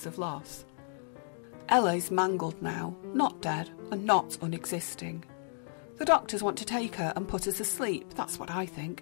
of loss. Ella is mangled now, not dead and not unexisting. The doctors want to take her and put her to sleep, that's what I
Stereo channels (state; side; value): silent; right; 56 dB below the other